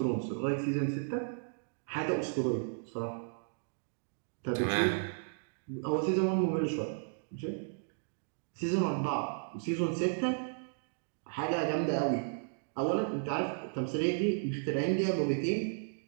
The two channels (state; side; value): silent; left; digital silence